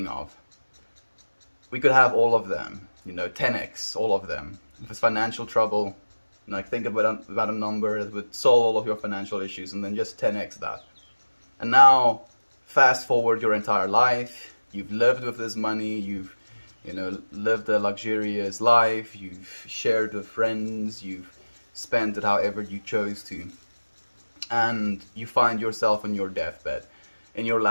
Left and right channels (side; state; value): both; inverted; correlation -1.00